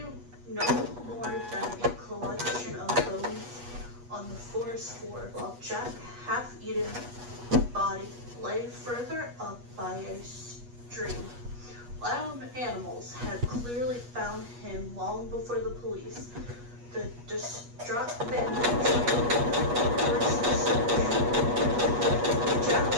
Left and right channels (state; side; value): late; left; 8.3 ms